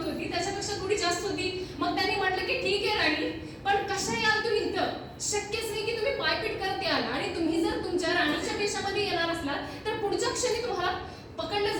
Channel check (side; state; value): both; identical; correlation 1.00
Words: होती त्याच्यापेक्षा थोडी जास्त होती. मग त्यांनी म्हटलं की ठीक आहे राणी, पण कसं याल तुम्ही इथं? शक्यच नाही की तुम्ही पायपीट करत याल. आणि तुम्ही जर तुमच्या राणीच्या वेशामध्ये येणार असलात तर पुढच्या क्षणी तुम्हाला पकडलं